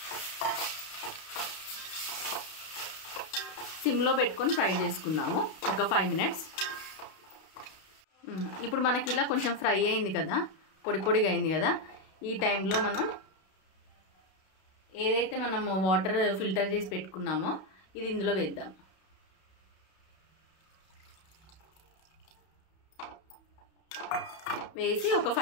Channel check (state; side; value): late; right; 32 ms